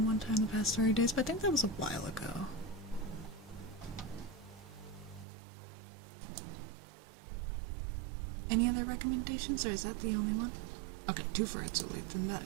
one time the past 30 days, but I think that was a while ago. Any other recommendations, or is that the only one? Okay, 2 for Itsuli, then that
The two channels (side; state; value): left; drops out; at 5.2 s